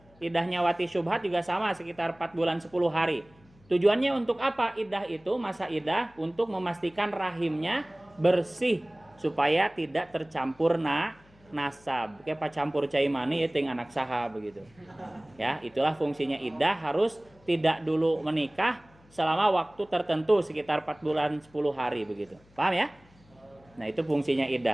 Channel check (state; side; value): noise; left; hum, 29 dB below the sound